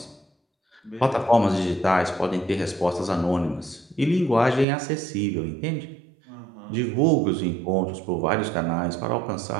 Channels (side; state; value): left; drops out; at 4.7 s